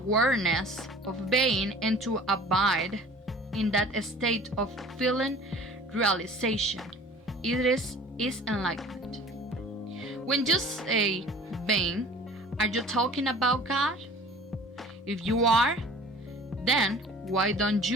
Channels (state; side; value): normal; both; correlation 0.45